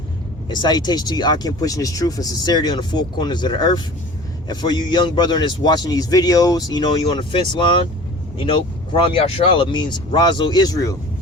And salutations to you, Akim, pushing this truth and sincerity on the four corners of the earth. And for you young brethren that's watching these videos, you know, you on the fence line, you know, Quram Yashrala means Razo Israel.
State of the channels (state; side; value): normal; both; correlation 0.42